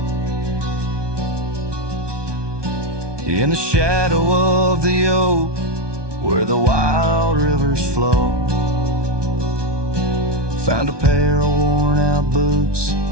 In the shadow of the oak, where the wild rivers flow, found a pair of worn out boots,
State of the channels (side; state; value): left; late; 1.2 ms